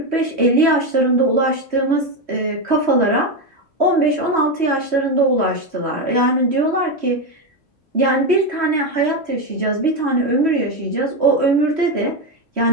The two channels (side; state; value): left; late; 3.1 ms